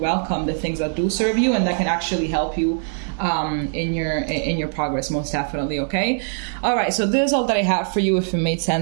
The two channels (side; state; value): left; silent; digital silence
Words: the things that do serve you, and that can actually help you in your progress, most definitely. Okay. All right. So this is all that I have for you. If it made